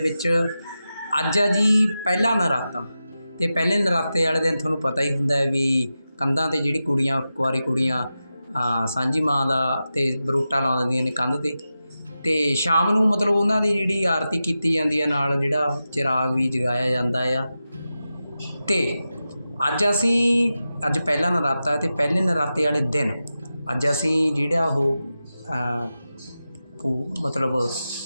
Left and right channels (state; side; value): inverted; both; correlation -0.92